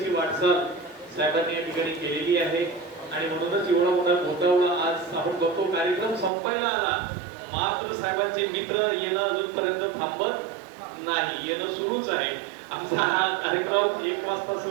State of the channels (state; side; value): drops out; left; at 6.3 s